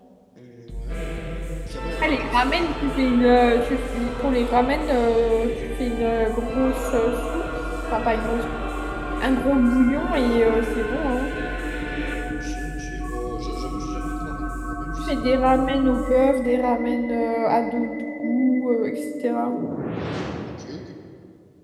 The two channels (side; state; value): both; identical; correlation 1.00